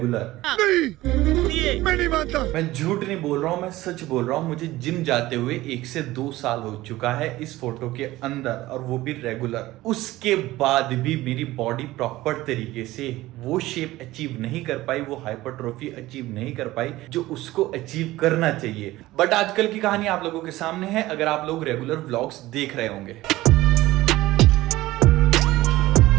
नहीं, मैं नहीं मानता। मैं झूठ नहीं बोल रहा हूं, मैं सच बोल रहा हूं। मुझे जिम जाते हुए 1 से 2 साल हो चुका है इस फोटो के अंदर, और वो भी रेगुलर। उसके बाद भी मेरी बॉडी प्रॉपर तरीके से वो शेप अचीव नहीं कर पाई, वो हाइपरट्रोफी अचीव नहीं कर पाई जो उसको अचीव करना चाहिए। बट आजकल की कहानी आप लोगों के सामने है, अगर आप लोग रेगुलर व्लॉग्स देख रहे होंगे।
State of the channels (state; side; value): quieter; left; 17.4 dB